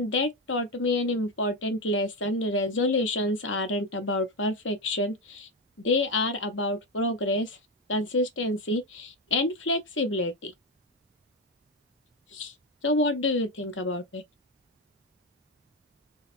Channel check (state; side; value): normal; both; correlation 0.11